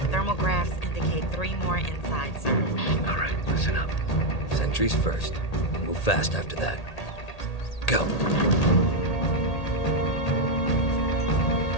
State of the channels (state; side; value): late; right; 1.8 ms